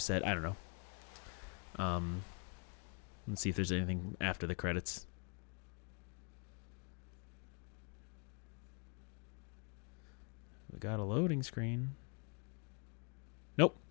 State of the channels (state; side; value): quieter; right; 38.3 dB